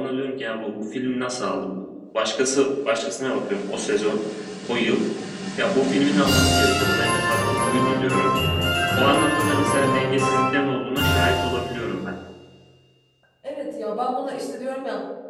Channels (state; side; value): identical; both; correlation 1.00